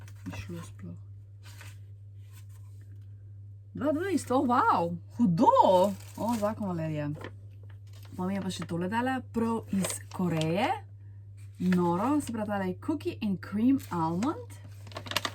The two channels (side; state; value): both; identical; correlation 1.00